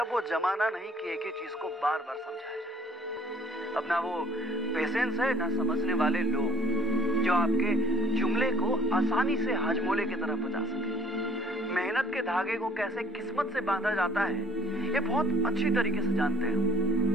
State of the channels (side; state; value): both; normal; correlation 0.54